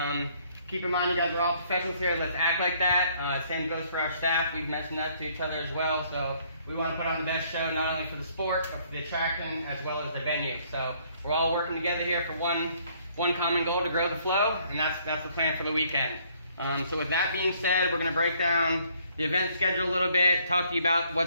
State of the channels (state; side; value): inverted; both; correlation -0.64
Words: Keep in mind you guys are all professionals here. Let's act like that. Same goes for our staff. We've mentioned that to each other as well. So we want to put on the best show, not only for the sport, but for the attraction as well as the venue. So we're all working together here for one common goal, to grow the flow, and that's the plan for the weekend. So with that being said, we're going to break down the event schedule a little bit, talk to you about